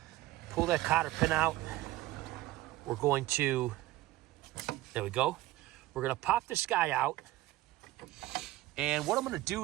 Pull that cotter pin out. We're going to, there we go. We're going to pop this guy out. And what I'm going to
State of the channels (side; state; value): left; quieter; 17.0 dB